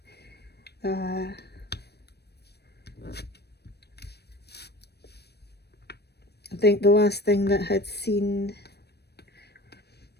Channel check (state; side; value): late; right; 0.47 ms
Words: I think the last thing that I'd seen,